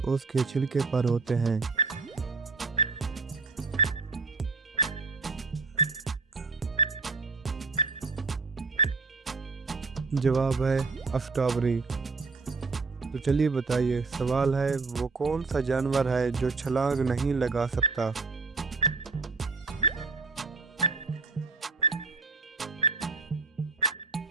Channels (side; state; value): left; quieter; 4.2 dB